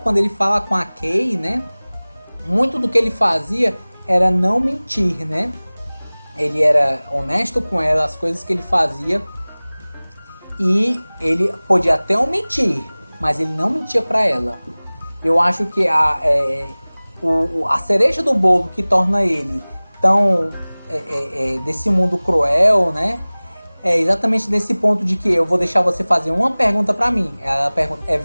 quando ele fala com a Kay, né? Muito do que ele fazia era não mentir, né? Ele era honesto com ela, as coisas que ele fazia. E ele podia até mentir, mas ele não mentia para ela. Eu acho que a cereja do bolo que torna ele tão desse mundo cruel, né? É exatamente nesse ponto de que eu vou deixar você fazer uma pergunta pra mim. Ela pergunta, é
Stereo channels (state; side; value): inverted; both; correlation -1.00